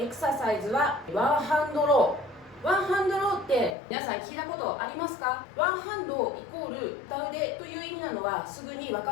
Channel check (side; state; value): right; drops out; at 3.8 s